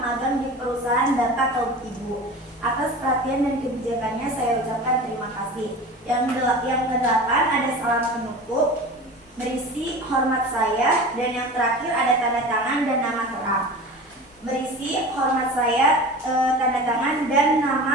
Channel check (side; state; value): both; normal; correlation 0.34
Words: magang di perusahaan Bapak atau Ibu. Atas perhatian dan kebijakannya saya ucapkan terima kasih. Yang kedelapan ada salam penutup berisi hormat saya dan yang terakhir ada tanda tangan dan nama terang. Berisi hormat saya, tanda tangan dan